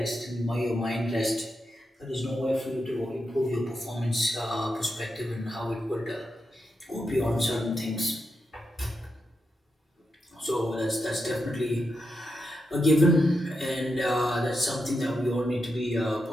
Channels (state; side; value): normal; both; correlation 0.86